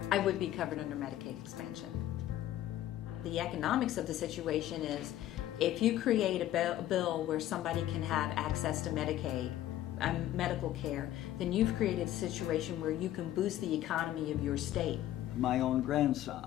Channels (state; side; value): quieter; right; 13.2 dB